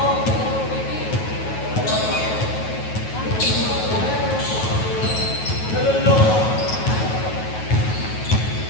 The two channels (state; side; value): late; right; 9.3 ms